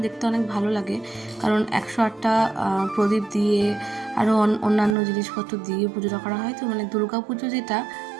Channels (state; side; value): drops out; left; at 5.0 s